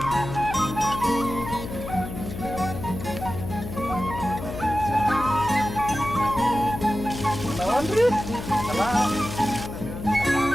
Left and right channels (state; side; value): noise; left; hum, 8 dB below the sound